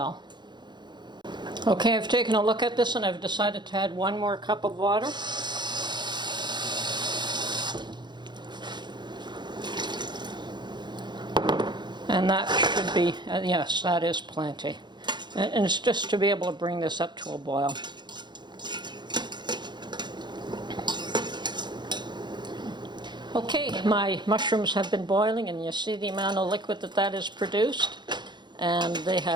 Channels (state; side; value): late; left; 0.21 ms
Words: Okay, I've taken a look at this and I've decided to add 1 more cup of water. And that should be, yes, that is plenty. And it's just to be able to bring this up to a boil. Okay, my mushrooms have been boiling, and you see the amount of liquid that is produced. And they